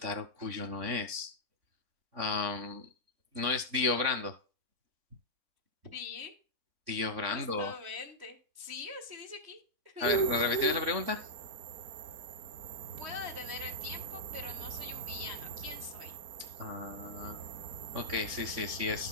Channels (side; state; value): left; late; 3.6 ms